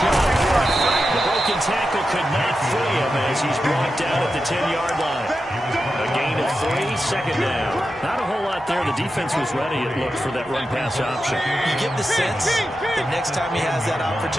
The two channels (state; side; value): normal; both; correlation 0.90